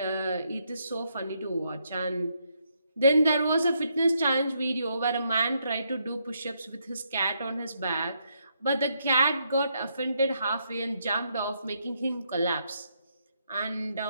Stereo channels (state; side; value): inverted; both; correlation -0.77